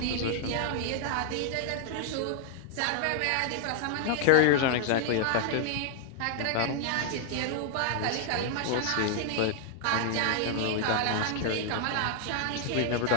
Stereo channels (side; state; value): both; different; correlation 0.00